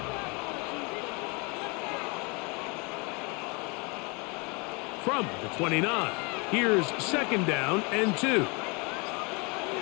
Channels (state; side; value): quieter; right; 30.1 dB